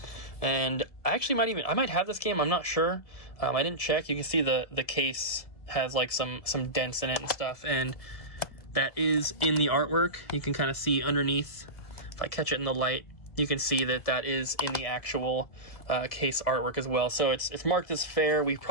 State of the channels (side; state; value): right; late; 1.7 ms